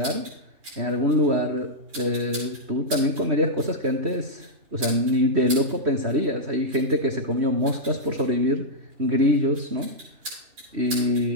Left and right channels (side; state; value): left; late; 3.1 ms